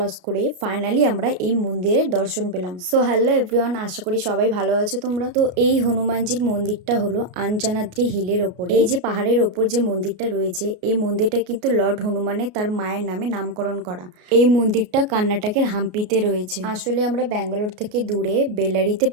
করে ফাইনালি আমরা এই মন্দিরের দর্শন পেলাম। সো হ্যালো এভরিওয়ান, আশা করি সবাই ভালো আছো তোমরা। তো এই হনুমানজির মন্দিরটা হলো আঞ্জানাদ্রি হিলের ওপরে। এই যে পাহাড়ের ওপর যে মন্দিরটা রয়েছে, এই মন্দিরটা কিন্তু লর্ড হনুমানের তার মায়ের নামে নামকরণ করা। এই মন্দিরটা কর্ণাটকের হাম্পিতে রয়েছে। আসলে আমরা ব্যাঙ্গালোর থেকে দূরে বেলারিতে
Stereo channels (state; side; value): late; left; 33 ms